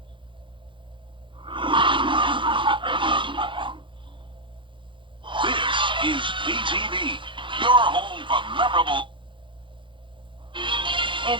This is WJBF, your home for memorable.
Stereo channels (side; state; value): left; late; 0.24 ms